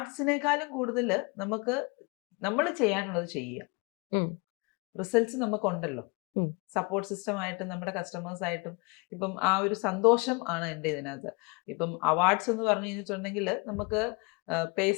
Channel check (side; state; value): right; quieter; 29.7 dB